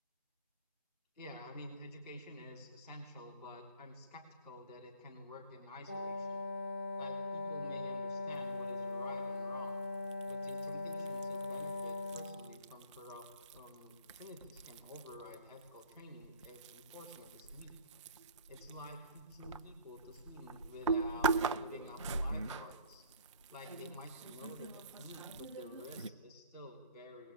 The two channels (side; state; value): both; inverted; correlation -0.52